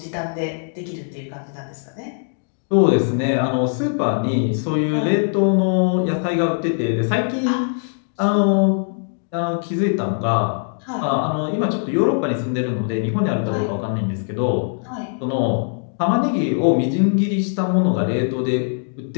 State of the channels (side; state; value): right; silent; digital silence